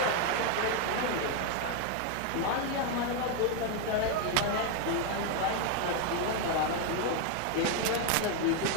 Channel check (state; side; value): different; both; correlation 0.01